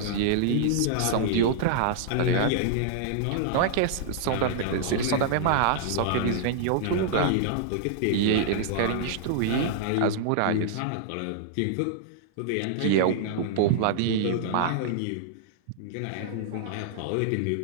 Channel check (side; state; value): both; different; correlation -0.01